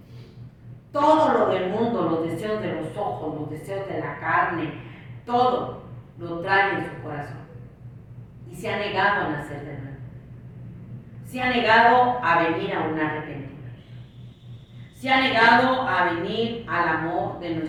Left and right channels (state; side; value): identical; both; correlation 1.00